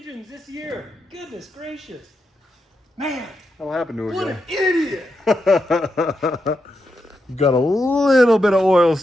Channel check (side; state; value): both; normal; correlation 0.85